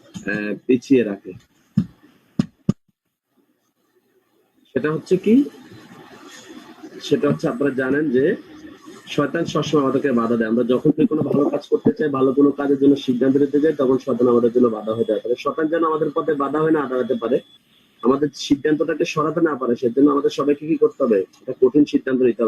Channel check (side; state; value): both; identical; correlation 1.00